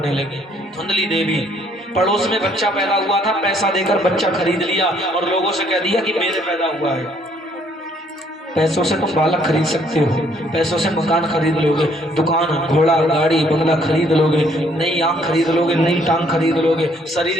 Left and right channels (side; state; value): both; normal; correlation 0.65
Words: लगी। धुंधली देवी पड़ोस में बच्चा पैदा हुआ था, पैसा देकर बच्चा खरीद लिया और लोगों से कह दिया कि मेरे पैदा हुआ है। पैसों से तुम बालक खरीद सकते हो, पैसों से मकान खरीद लोगे, दुकान घोड़ा गाड़ी बंगला खरीद लोगे, नई आंख खरीद लोगे, नई टांग खरीद लोगे,